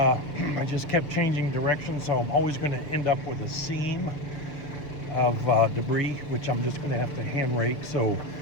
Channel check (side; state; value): right; late; 6.7 ms